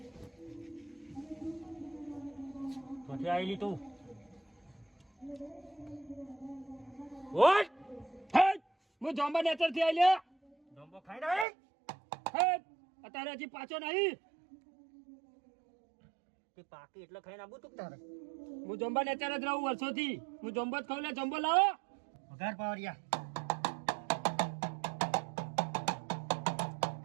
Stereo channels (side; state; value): left; drops out; at 11.5 s